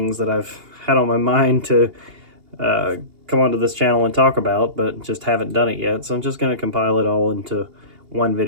that I've had on my mind to come onto this channel and talk about, but just haven't done it yet. So I'm just going to compile it all into one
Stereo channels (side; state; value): left; late; 2.8 ms